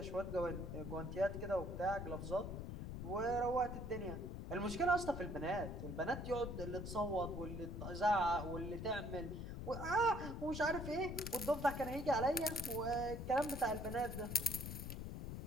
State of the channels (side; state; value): left; noise; rumble, 6 dB below the sound